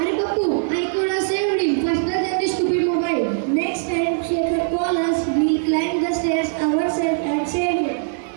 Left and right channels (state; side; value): silent; left; 59 dB below the other